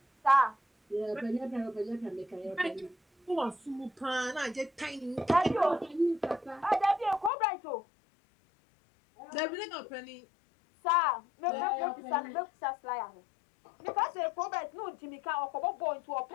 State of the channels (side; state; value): right; drops out; at 7.3 s